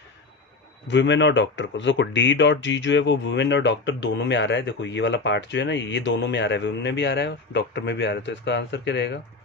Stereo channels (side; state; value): right; quieter; 3.7 dB